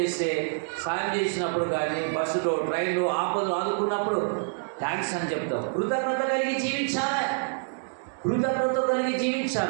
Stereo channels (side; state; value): left; silent; digital silence